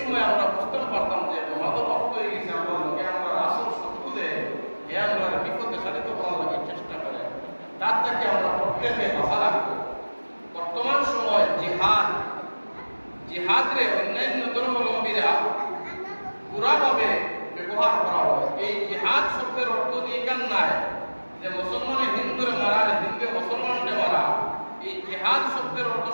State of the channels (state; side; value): inverted; both; correlation -1.00